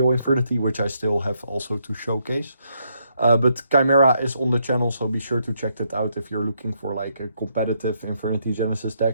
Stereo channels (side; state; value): both; inverted; correlation -0.76